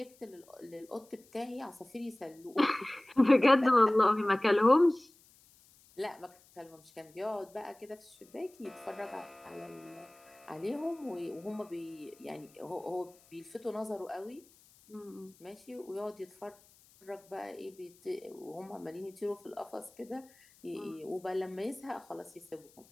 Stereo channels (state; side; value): noise; left; hiss, 27 dB below the sound